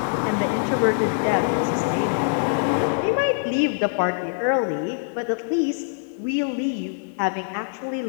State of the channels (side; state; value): right; silent; 63 dB below the other